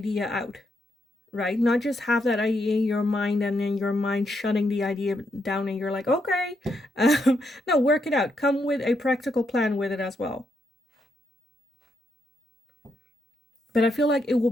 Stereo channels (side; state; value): both; normal; correlation 0.79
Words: out, right? Not just have that idea in your mind and then your mind shutting the idea down and you're like, okay. No, work it out. Come with a practical plan with it as well. But I feel like it will